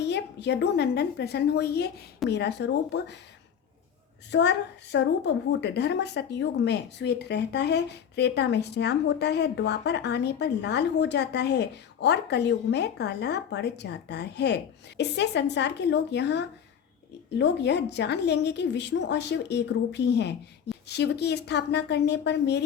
यदुनंदन प्रसन्न होइए। मेरा स्वरूप स्वर स्वरूप भूत धर्म सतयुग में श्वेत रहता है, त्रेता में श्याम होता है, द्वापर आने पर लाल हो जाता है और कलयुग में काला पड़ जाता है। इससे संसार के लोग यह जान लेंगे कि विष्णु और शिव एक रूप ही हैं। शिव की स्थापना करने पर मेरी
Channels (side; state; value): right; quieter; 8.1 dB